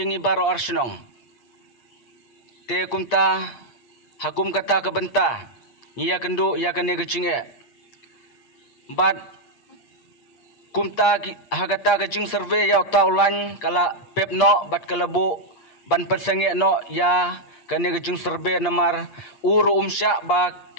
baro arsenong te kumta hakum kata kebenta ngia kendu ya kene kecinge bat kumta hagata kacing survey ya taulan kala pepno bat kalabu ban persenge no ya kane gejung serbe namar uru umsya ba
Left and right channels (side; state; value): right; late; 8.5 ms